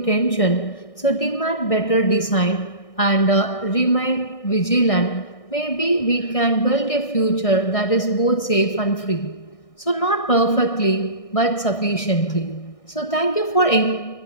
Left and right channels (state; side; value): late; right; 1.6 ms